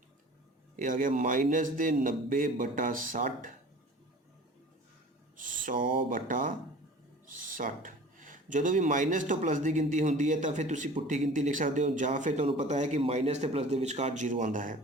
ਇਹ ਆ ਗਿਆ -90/60, 100/60। ਜਦੋਂ ਵੀ ਮਾਈਨਸ ਤੋਂ ਪਲੱਸ ਦੀ ਗਿਣਤੀ ਹੁੰਦੀ ਹੈ ਤਾਂ ਫਿਰ ਤੁਸੀਂ ਪੁੱਠੀ ਗਿਣਤੀ ਲਿਖ ਸਕਦੇ ਹੋ, ਜਾਂ ਫਿਰ ਤੁਹਾਨੂੰ ਪਤਾ ਹੈ ਕਿ ਮਾਈਨਸ ਤੇ ਪਲੱਸ ਦੇ ਵਿਚਕਾਰ 0 ਆਉਂਦਾ ਹੈ,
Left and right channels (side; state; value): both; normal; correlation 0.43